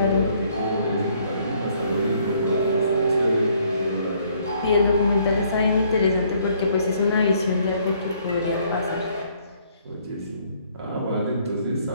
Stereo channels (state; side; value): inverted; both; correlation -0.65